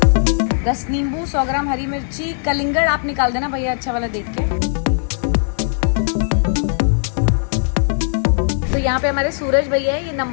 10 नींबू, 100 ग्राम हरी मिर्ची, कलिंगड़ आप निकाल देना भैया अच्छा वाला देख के। तो यहाँ पे हमारे सूरज भैया है, ये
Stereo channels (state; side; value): silent; right; digital silence